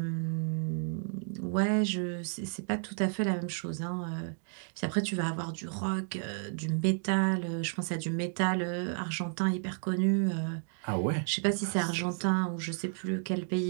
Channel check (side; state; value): left; silent; 56 dB below the other